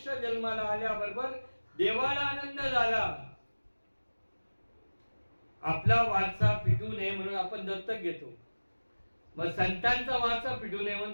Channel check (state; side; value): inverted; both; correlation -1.00